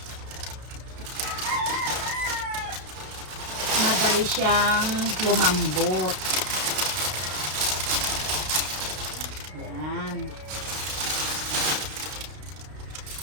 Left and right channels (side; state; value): left; late; 32 ms